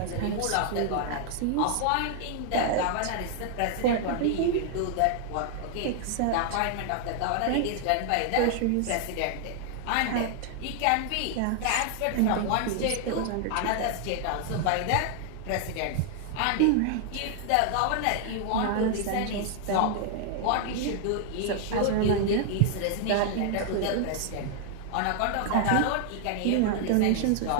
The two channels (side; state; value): both; different; correlation 0.00